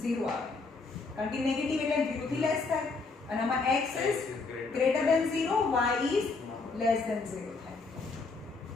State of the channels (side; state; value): right; quieter; 4.0 dB